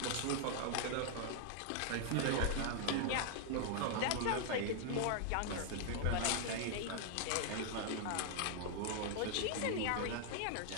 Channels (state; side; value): different; both; correlation 0.00